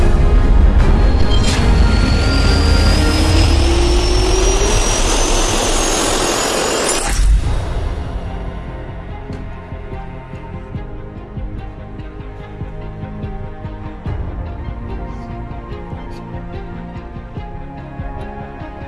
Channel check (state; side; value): identical; both; correlation 1.00